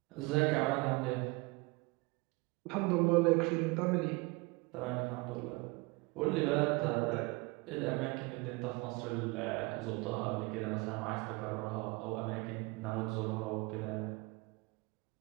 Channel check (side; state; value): left; quieter; 26.0 dB